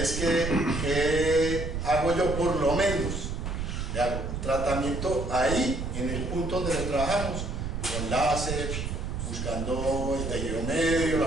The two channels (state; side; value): noise; right; rumble, 4 dB below the sound